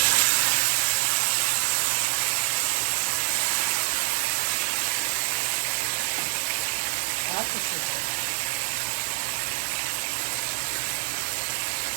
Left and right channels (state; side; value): silent; left; 59 dB below the other